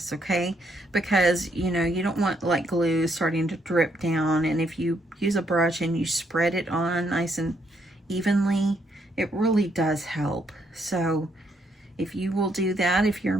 okay? Because, you know, you don't want like glue starting to drip down. And if you use a brush and you spread it on nice and evenly, it really does help. So if you will do that, if you're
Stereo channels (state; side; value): normal; both; correlation 0.73